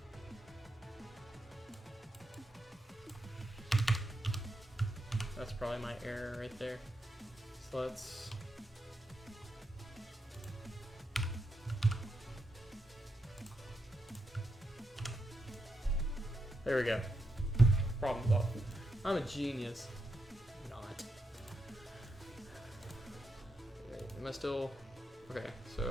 That's probably my error right there. So let's... There we go. Problem solved. I'm a genius. Not. Wait, am I still... Okay,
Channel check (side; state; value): both; normal; correlation 0.83